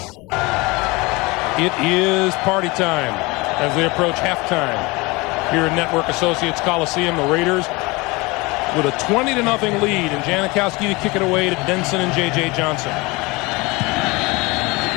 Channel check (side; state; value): right; quieter; 24.4 dB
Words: It is party time as they approach halftime here in Network Associates Coliseum. The Raiders with a 20-0 lead, and Janikowski to kick it away to Denson and J.J. Johnson.